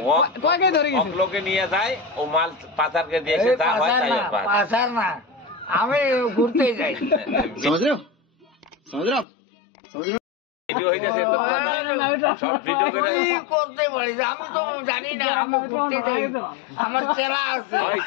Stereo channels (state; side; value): drops out; right; at 9.2 s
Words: কয় কেজি ধরে গেছেন লোকে নিয়ে যায় ও মাল পাচারকে দিয়েছে যা হয় তাই পায়। পাশার না আমি ঘুরতে যাই समझ रहे हो समझ रहे हो आप समझ रहे हो ভিডিও হইতেছে তো সব ভিডিও করে তুই করতে পারিস আমি তো জানি না আমি ঘুরতে যাই আমার চেলা আছে ওই